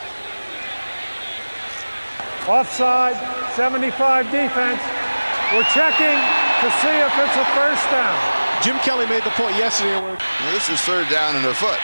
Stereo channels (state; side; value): inverted; both; correlation -1.00